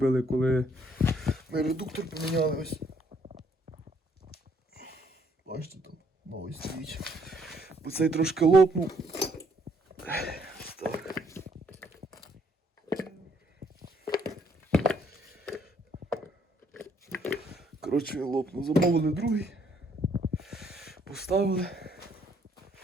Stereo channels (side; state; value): both; normal; correlation 0.67